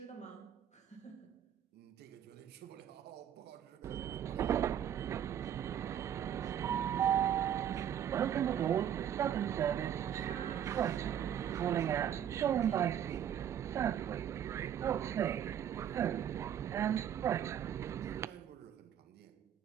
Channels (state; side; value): quieter; left; 9.6 dB